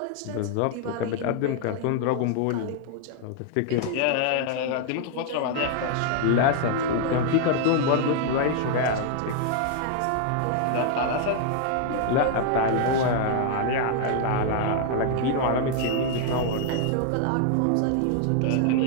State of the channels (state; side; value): different; both; correlation 0.00